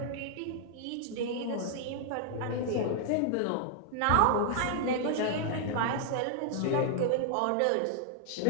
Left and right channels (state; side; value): different; both; correlation -0.01